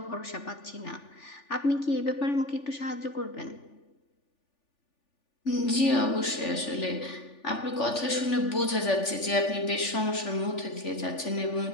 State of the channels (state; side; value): late; right; 3.4 ms